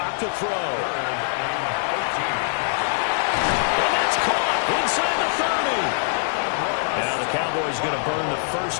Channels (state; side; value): silent; right; 63 dB below the other